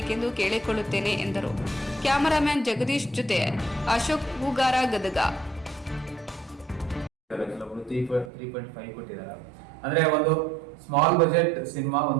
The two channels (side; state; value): left; drops out; at 8.3 s